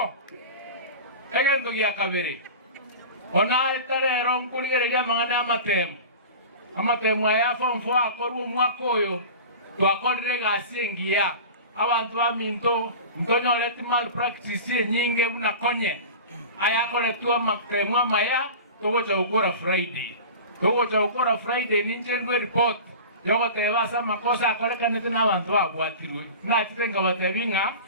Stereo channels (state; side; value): inverted; both; correlation -0.34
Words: Egendo gya kabere. Ona itarero nkuligereria mangana amatemu aya form 4 akorwo mwaka oyo twakorire gasi ngia abantu baminto ndonyoleti malpractice nyinge bunakonye aya koletwa amatemu amaya togocha gukora Friday ninjendwe report yogo telebasa makosa akorekanete n'abantu bagwatirwe nakitenga batebinga